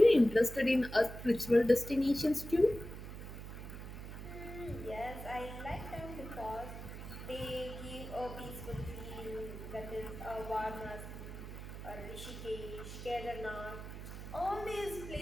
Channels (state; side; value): noise; right; hum, 10 dB below the sound